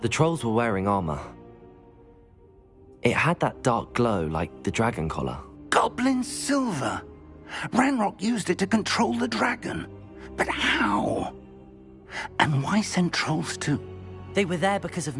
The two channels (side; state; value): both; identical; correlation 1.00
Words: the trolls were wearing armor. It had that dark glow like the dragon collar. Goblin silver! Ranrock used it to control the dragon. But how? And why send trolls to... They were there because of